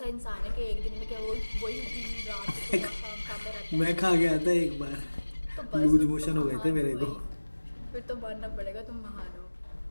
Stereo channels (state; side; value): inverted; both; correlation -1.00